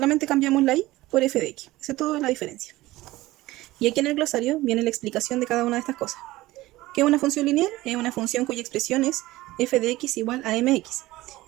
cambiamos la y por f de x. Esa es toda la diferencia. Y aquí en el glosario viene la explicación de cada una de estas cosas. ¿Qué es una función lineal? Es una función cuya expresión es f de x igual a mx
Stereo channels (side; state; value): left; quieter; 18.0 dB